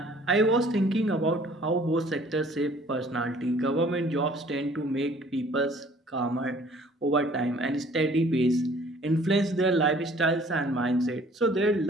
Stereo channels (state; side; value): normal; both; correlation 0.55